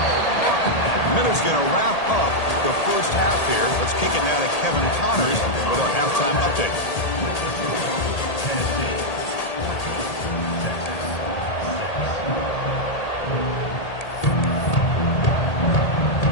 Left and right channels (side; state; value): right; late; 1.8 ms